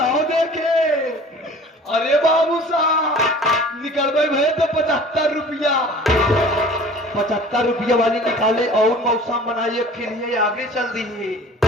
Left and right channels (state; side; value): normal; both; correlation 0.45